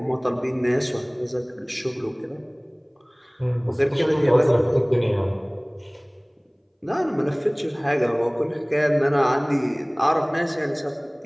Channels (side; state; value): both; identical; correlation 1.00